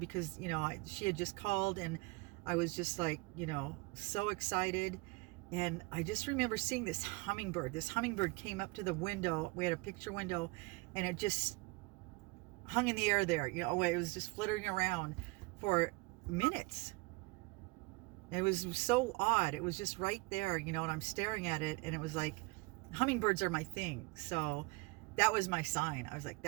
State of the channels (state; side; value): quieter; left; 25.4 dB